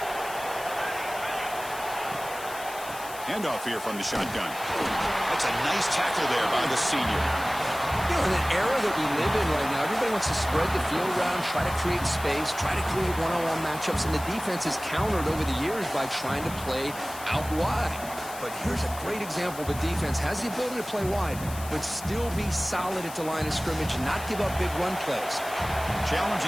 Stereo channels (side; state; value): left; noise; hiss, 14 dB below the sound